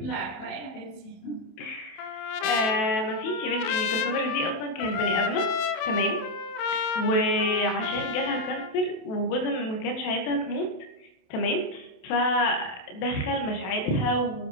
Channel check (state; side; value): late; right; 27 ms